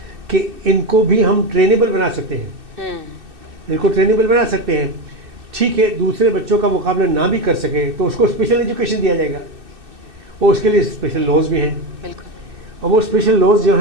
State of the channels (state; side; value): late; left; 2.6 ms